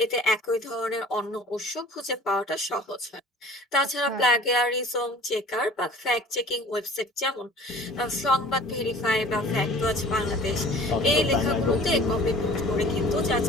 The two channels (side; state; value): both; normal; correlation 0.47